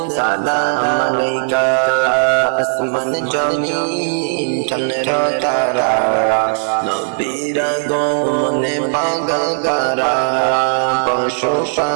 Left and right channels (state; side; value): silent; left; 65 dB below the other